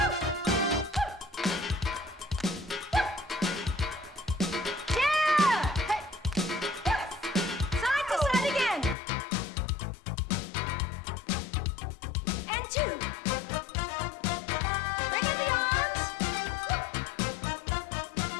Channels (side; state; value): right; drops out; at 9.0 s